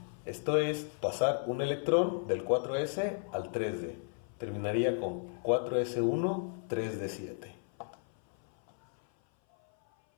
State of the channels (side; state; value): right; silent; 55 dB below the other